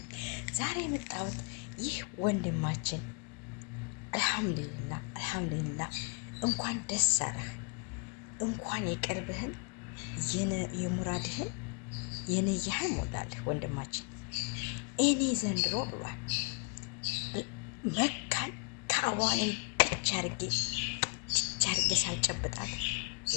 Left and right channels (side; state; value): right; quieter; 33.9 dB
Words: ዛሬ የመጣሁት ይህ ወንድማችን አልሐምዱሊላህ እንኳን ደስ አለህ፣ እንኳን የቀልብህን የሙራድህን የነያህን ሞላልህ ወንድማችን። እኔ ዘንድሮ ብሏል መካን ከአዋን ብቻ አድርጌ ሳልጨብጣት